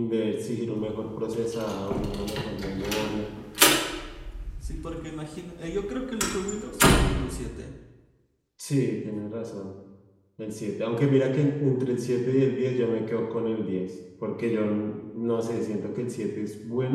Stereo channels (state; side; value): identical; both; correlation 1.00